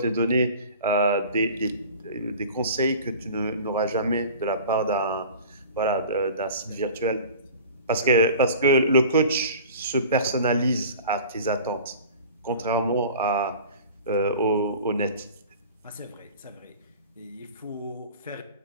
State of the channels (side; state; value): both; inverted; correlation -0.41